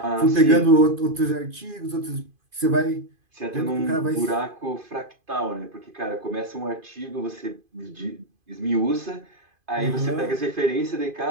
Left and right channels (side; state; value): left; late; 2.5 ms